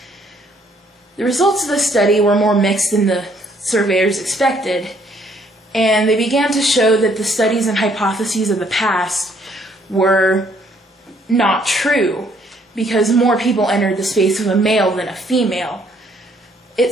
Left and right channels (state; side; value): normal; both; correlation 0.66